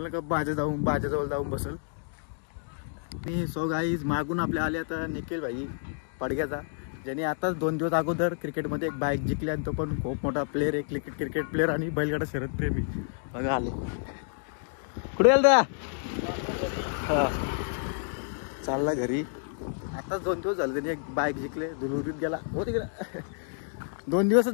का बाजाजवळ जाऊन बसल मी. सो गाईज मागून आपल्या आले आता निखिल भाई पडग्याचा, ज्याने आताच 2 दिवस अगोदर क्रिकेटमध्ये एक बाईक जिंकली. आणि तो पण खूप मोठा प्लेअर आहे, क्रिकेट प्लेअर आणि बैलगाडा शर्यत प्रेमी. बघा आले कुठे गेल हा चालला घरी. आताच 2 दिवस झाले त्याने एक बाईक जिंकले, दुलुरीत गेला हो तिकडे. 2 दिवसच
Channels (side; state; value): right; silent; digital silence